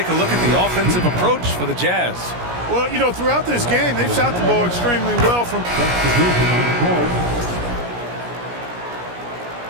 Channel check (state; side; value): late; left; 17 ms